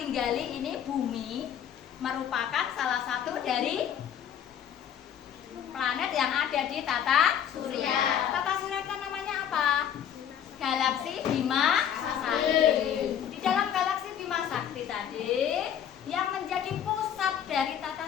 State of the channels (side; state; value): right; quieter; 9.3 dB